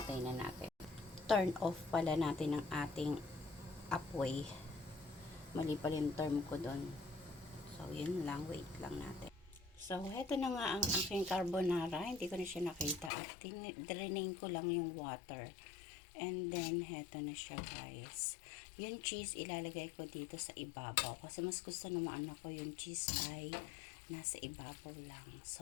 na natin. Turn off pala natin ang ating apoy. Mali pala yung term ko doon. So, yun lang. Wait lang natin. So, heto na nga ang aking carbonara. Hindi ko na siya nakita. At drainain ko lang yung water. And then, heto na siya guys. Yung cheese, ilalagay ko dito sa ibabaw. Kasi mas gusto naman ako yung cheese ay nasa ibabaw lang.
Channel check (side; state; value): right; drops out; at 13.1 s